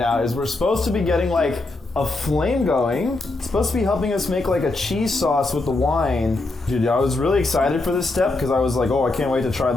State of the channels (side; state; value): right; quieter; 3.1 dB